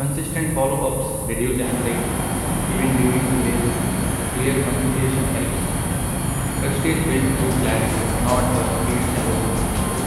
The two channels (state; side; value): identical; both; correlation 1.00